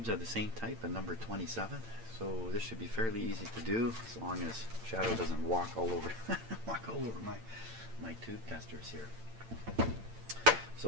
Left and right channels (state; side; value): late; left; 8.9 ms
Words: are the same type, and number 27. So this should be fairly easy to do, as long as Shadow doesn't walk all over my tube testers here.